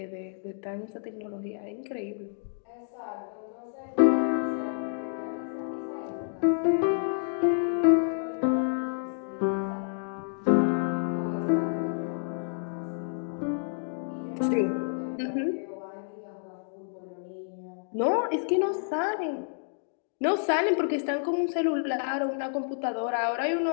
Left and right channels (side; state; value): right; silent; digital silence